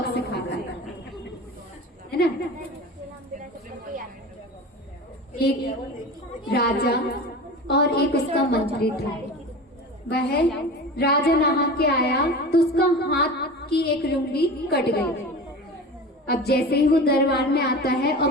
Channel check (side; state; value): both; normal; correlation 0.33